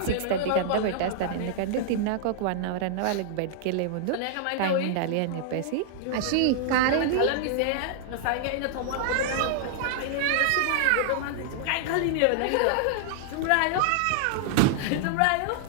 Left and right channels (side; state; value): both; different; correlation -0.01